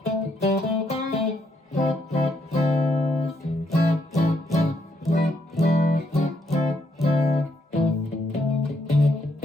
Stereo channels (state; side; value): normal; both; correlation 0.74